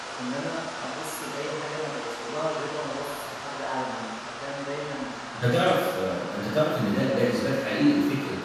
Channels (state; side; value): identical; both; correlation 1.00